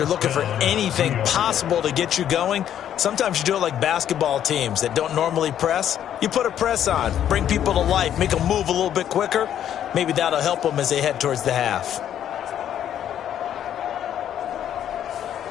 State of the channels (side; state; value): right; quieter; 10.3 dB